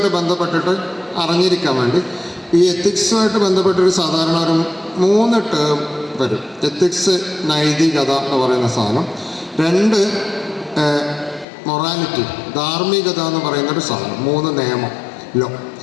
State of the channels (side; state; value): right; drops out; at 11.5 s